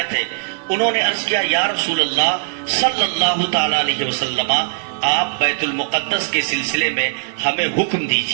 ہے، انہوں نے عرض کیا، یا رسول اللہ صلی اللہ تعالی علیہ وسلم، آپ بیت المقدس کے سلسلے میں ہمیں حکم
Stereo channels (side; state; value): left; silent; digital silence